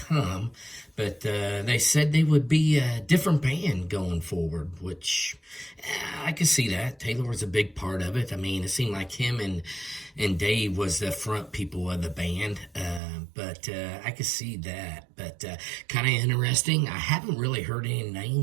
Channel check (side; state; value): left; drops out; at 13.0 s